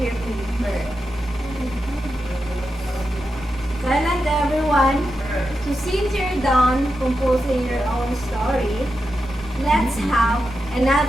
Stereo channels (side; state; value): both; normal; correlation 0.88